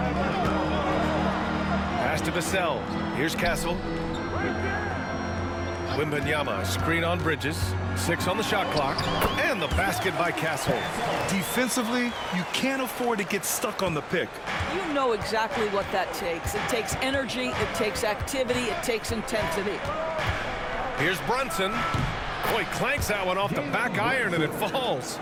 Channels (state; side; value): identical; both; correlation 1.00